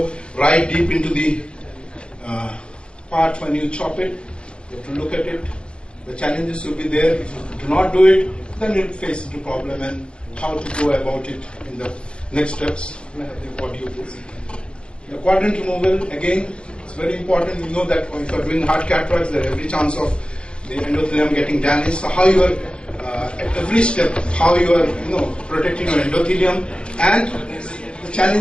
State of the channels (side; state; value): right; late; 0.056 ms